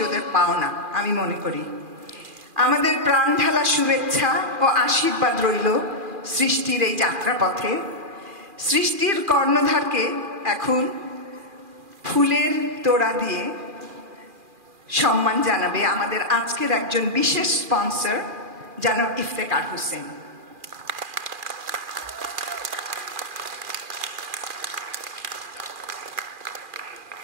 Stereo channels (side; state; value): left; late; 2.4 ms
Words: ওদের পাওনা আমি মনে করি। আমাদের প্রাণ ঢালা শুভেচ্ছা ও আশীর্বাদ রইল সৃষ্টির এই যাত্রাপথে। সৃষ্টির কর্ণধারকে এখন ফুলের তোড়া দিয়ে সম্মান জানাবে আমাদের আজকের একজন বিশেষ স্পন্সর, জনাব ইফতেখার হোসেন।